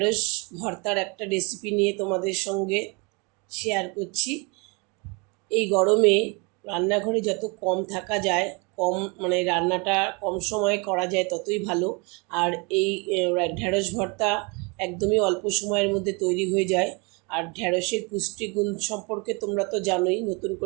ভর্তার একটা রেসিপি নিয়ে তোমাদের সঙ্গে শেয়ার করছি। এই গরমে রান্নাঘরে যত কম থাকা যায়, কম মানে রান্নাটা কম সময়ে করা যায় ততই ভালো। আর এই ঢ্যাঁড়স ভর্তা একদমই অল্প সময়ের মধ্যে তৈরি হয়ে যায়। আর ঢ্যাঁড়সের পুষ্টিগুণ সম্পর্কে তোমরা তো জানোই, নতুন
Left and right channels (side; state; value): left; quieter; 30.4 dB